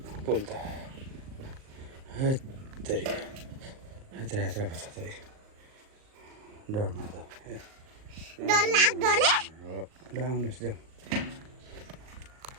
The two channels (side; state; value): left; late; 38 ms